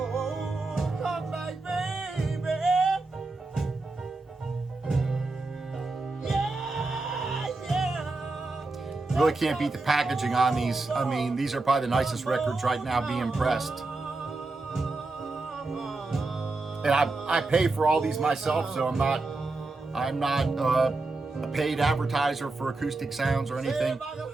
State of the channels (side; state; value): left; quieter; 3.4 dB